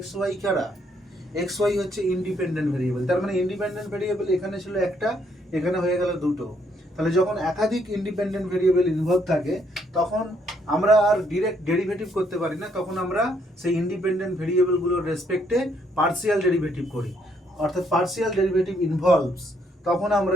x y কারা, x y হচ্ছে ইন্ডিপেন্ডেন্ট ভেরিয়েবল। তার মানে ইন্ডিপেন্ডেন্ট ভেরিয়েবল এখানে ছিল একটা, এখানে হয়ে গেল দুটো। তাহলে যখন একাধিক ইন্ডিপেন্ডেন্ট ভেরিয়েবল ইনভলভ থাকে তখন আমরা আর ডিরেক্ট ডেরিভেটিভ করতে পারি না, তখন আমরা সেই ইন্ডিপেন্ডেন্ট ভেরিয়েবলগুলোর রেসপেক্টে পার্সিয়াল ডেরিভেটিভ করি, অর্থাৎ পার্সিয়াল ডেরিভেটিভ ইনভলভস, তখন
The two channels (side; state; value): both; normal; correlation 0.71